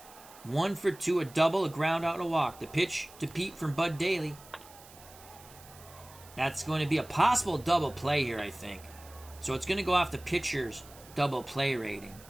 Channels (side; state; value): right; noise; hiss, 21 dB below the sound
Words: 1 for 2, a double, a ground out, and a walk. The pitch to Pete from Bud Daly. That's going to be a possible double play here, I think. So it's going to go off the pitcher's double play rating.